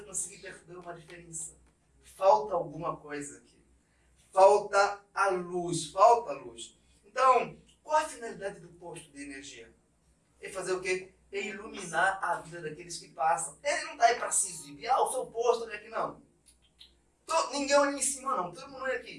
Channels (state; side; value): identical; both; correlation 1.00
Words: conseguir perceber uma diferença. Falta alguma coisa aqui. Falta a luz. Então, qual a finalidade do posto de energia? É fazer o quê? É iluminar a vida daqueles que passam. Ele não está aí para se exibir. O seu posto, olha aqui, não. Ninguém olha em cima, não. Todo mundo olha